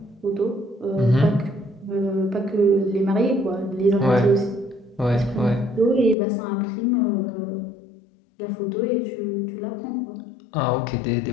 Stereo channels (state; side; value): drops out; right; at 6.2 s